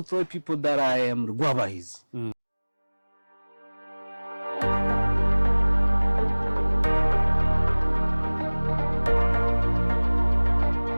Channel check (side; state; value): both; inverted; correlation -1.00